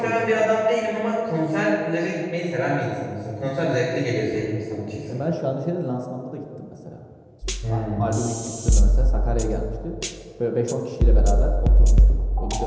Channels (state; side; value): identical; both; correlation 1.00